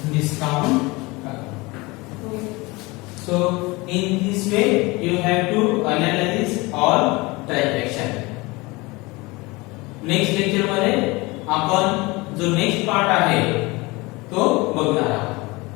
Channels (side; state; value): right; quieter; 23.7 dB